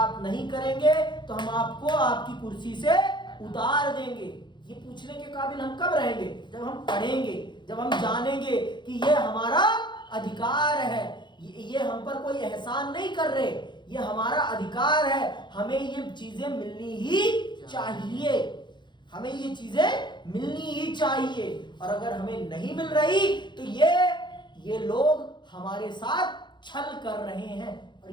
नहीं करेंगे तो हम आपको आपकी कुर्सी से उतार देंगे। ये पूछने के काबिल हम कब रहेंगे? जब हम पढ़ेंगे, जब हम जानेंगे कि ये हमारा अधिकार है, ये हम पर कोई एहसान नहीं कर रहे, ये हमारा अधिकार है, हमें ये चीजें मिलनी ही चाहिए, हमें ये चीजें मिलनी ही चाहिए। और अगर हमें नहीं मिल रही तो ये लोग हमारे साथ छल कर रहे हैं। और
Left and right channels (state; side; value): late; right; 0.22 ms